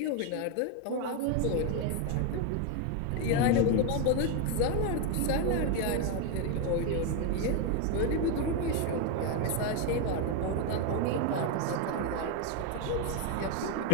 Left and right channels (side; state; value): both; different; correlation 0.01